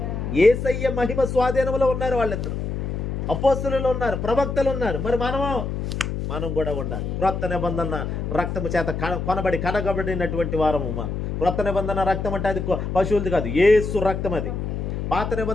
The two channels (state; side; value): noise; left; hum, 3 dB below the sound